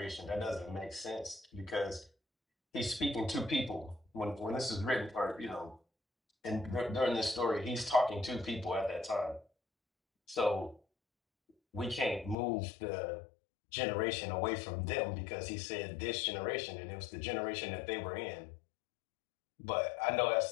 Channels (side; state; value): right; drops out; at 12.4 s